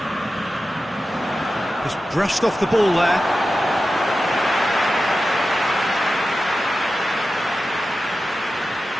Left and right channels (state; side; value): normal; both; correlation 0.93